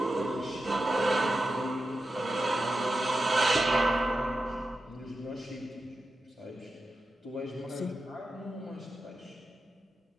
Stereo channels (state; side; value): normal; both; correlation 0.91